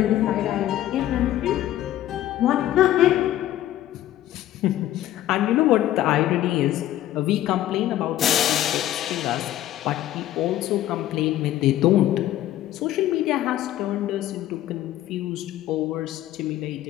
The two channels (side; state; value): right; quieter; 13.3 dB